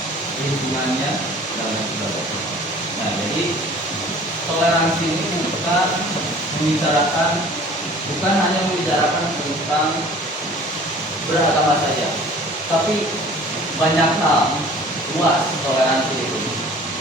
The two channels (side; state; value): both; normal; correlation 0.48